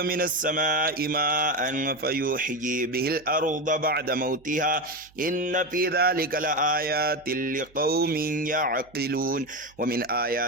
من السماء ماء فيحيي به الأرض بعد موتها إن في ذلك لآيات لقوم يعقلون ومن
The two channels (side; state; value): right; noise; hum, 29 dB below the sound